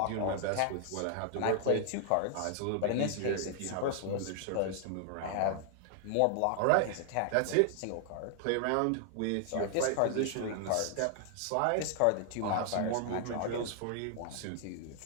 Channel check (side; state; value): both; different; correlation 0.00